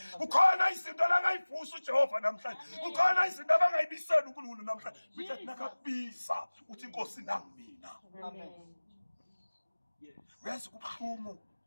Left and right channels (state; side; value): inverted; both; correlation -1.00